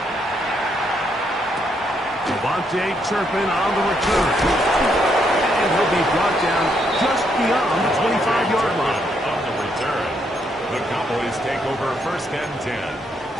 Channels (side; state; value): both; normal; correlation 0.75